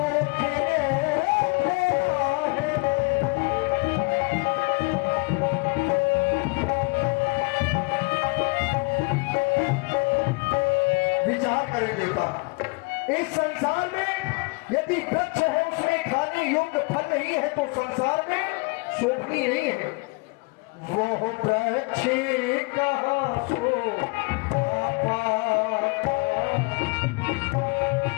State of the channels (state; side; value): quieter; right; 28.2 dB